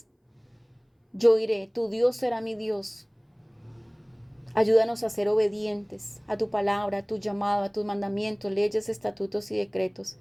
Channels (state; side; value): identical; both; correlation 1.00